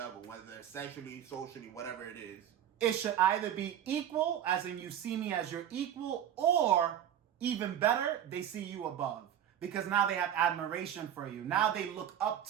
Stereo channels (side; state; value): left; quieter; 10.3 dB